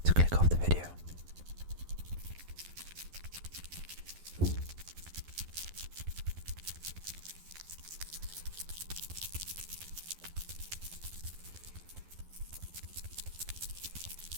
to click off the video.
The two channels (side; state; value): left; late; 12 ms